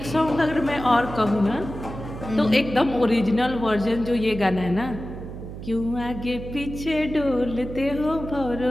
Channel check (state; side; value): noise; right; hum, 10 dB below the sound